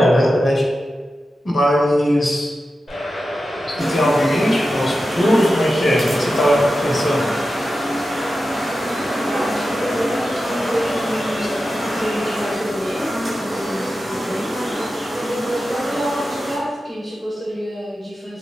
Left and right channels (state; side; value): normal; both; correlation 0.92